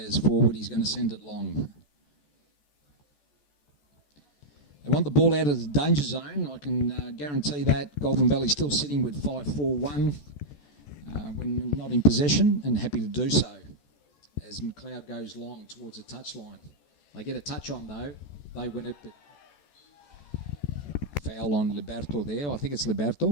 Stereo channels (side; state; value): right; late; 14 ms